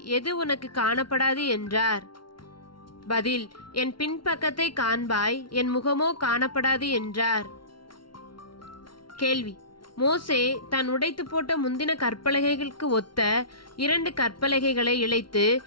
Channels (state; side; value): late; right; 0.73 ms